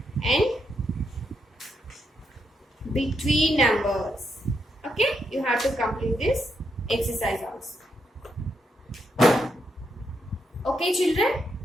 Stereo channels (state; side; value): normal; both; correlation 0.81